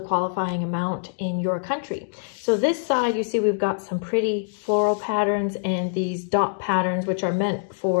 qualifying amount in your country. So this side, you see we've got some pretty floral patterns and these dot patterns, which are meant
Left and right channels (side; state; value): right; silent; digital silence